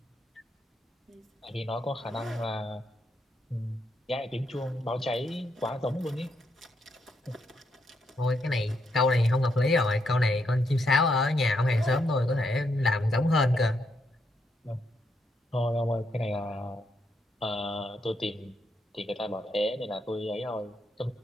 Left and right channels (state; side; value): normal; both; correlation 0.78